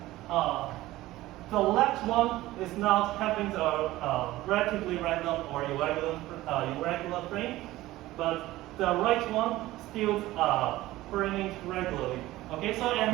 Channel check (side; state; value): left; quieter; 16.9 dB